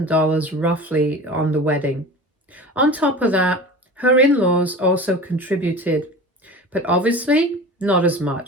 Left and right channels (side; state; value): both; normal; correlation 0.35